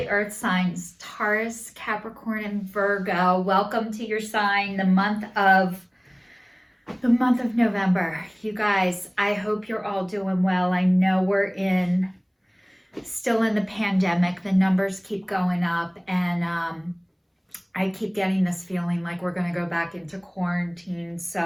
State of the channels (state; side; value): identical; both; correlation 1.00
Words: earth signs, Taurus, Capricorn, and Virgo. Welcome to your sign, the month of November. You guys, I hope you're all doing well. I know we're still in the pandemic. The numbers keep going up, and I keep getting this feeling like we're going to go back into quarantine.